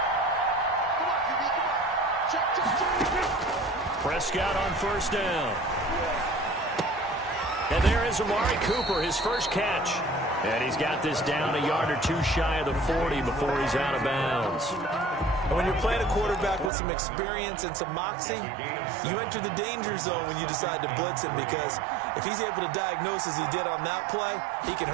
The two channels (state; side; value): drops out; left; at 16.7 s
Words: Prescott on 1st down. And there is Amari Cooper, his first catch. And he's got this down a yard or 2 shy of the 40 before he's out of bounds. And when you're playing a quarterback with some experience and some moxie, you enter the danger zone when you decide to blitz him, because if he's able to diagnose as he did on that play, he can